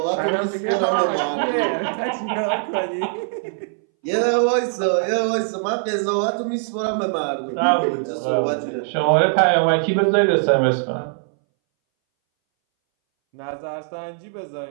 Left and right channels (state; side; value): silent; left; 62 dB below the other